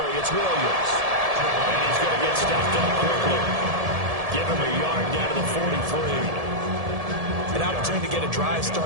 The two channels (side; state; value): left; late; 1.7 ms